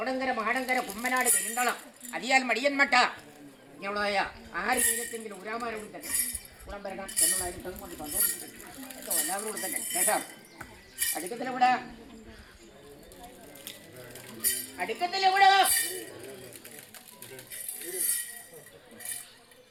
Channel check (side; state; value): both; identical; correlation 1.00